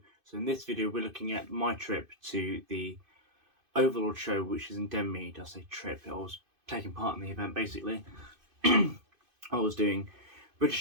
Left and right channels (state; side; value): late; left; 2.5 ms